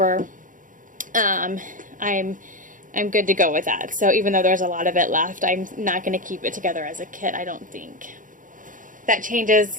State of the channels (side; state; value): left; late; 0.38 ms